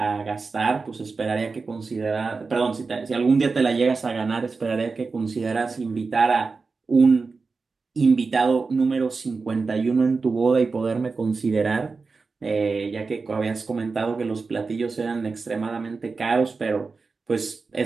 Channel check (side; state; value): left; quieter; 4.4 dB